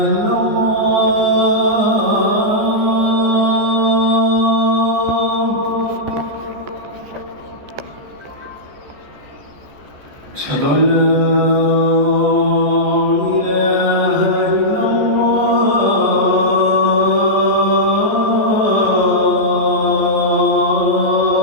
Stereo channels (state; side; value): late; left; 14 ms